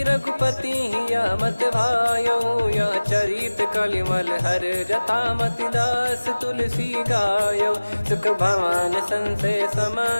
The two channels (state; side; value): inverted; both; correlation -1.00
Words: रघुपति या मत भायो। या चरित कलिमल हर जथा, मति दास तुलसी गायो। सुख भवन संशय